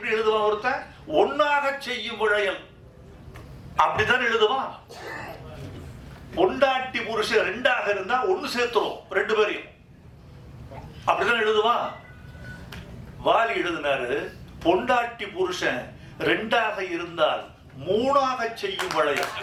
எழுதுவான்? ஒருத்தன் ஒன்னாக செய்யும் வளையல் அப்படித்தான் எழுதுவான். பொண்டாட்டி புருஷன் 2ஆக இருந்தா 1 சேர்த்துரும் 2 பேரையும், அப்படிதான் எழுதுவான். வாலி எழுதினாரு, பொண்டாட்டி புருஷன் 2ஆக இருந்தால் 3ஆக செய்யும் வளையல்.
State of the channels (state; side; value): identical; both; correlation 1.00